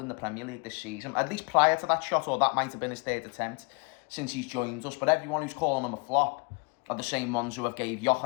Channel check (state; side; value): quieter; right; 30.9 dB